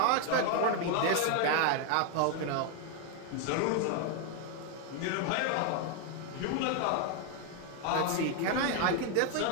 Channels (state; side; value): different; both; correlation 0.01